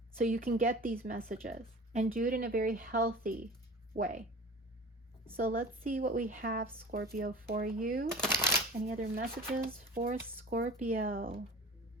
so you can get these messages, and do it in a very healthy way. So let's see what we have, Scorpio, for you. Any other messages for Scorpio?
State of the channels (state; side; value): normal; both; correlation 0.39